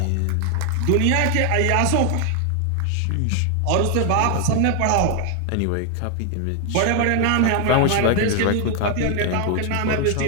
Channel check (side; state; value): both; different; correlation 0.00